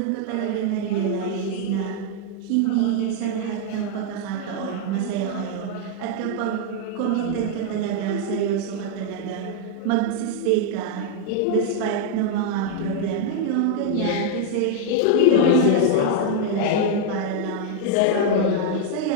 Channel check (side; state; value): both; different; correlation -0.01